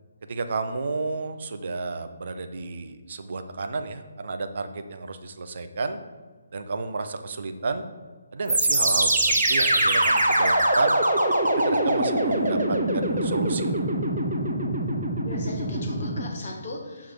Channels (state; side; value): inverted; both; correlation -0.74